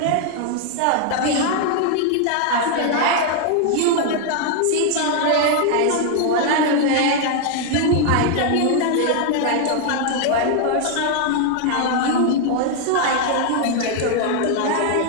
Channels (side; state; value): both; different; correlation 0.00